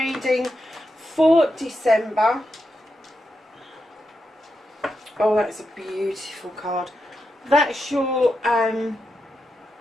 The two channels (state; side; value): normal; both; correlation 0.86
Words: for December. Oh, that's a beautiful card. That's your current